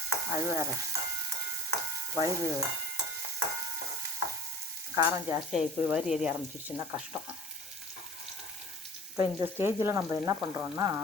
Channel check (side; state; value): both; normal; correlation 0.43